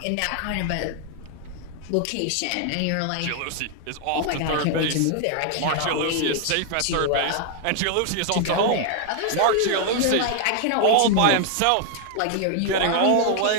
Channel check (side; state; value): both; different; correlation 0.00